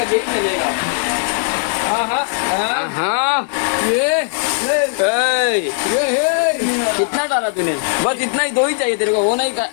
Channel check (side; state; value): right; silent; 68 dB below the other